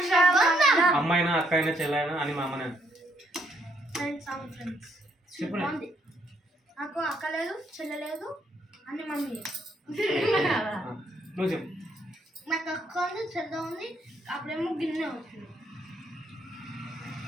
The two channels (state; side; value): normal; both; correlation 0.72